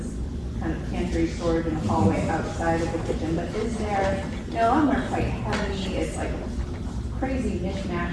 kind of pantry storage in a hallway outside of the kitchen. But is there, you know, some are quite heavy, it's like a crazy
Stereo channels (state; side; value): identical; both; correlation 1.00